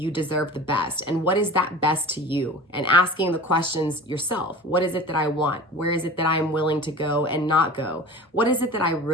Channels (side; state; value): both; normal; correlation 0.37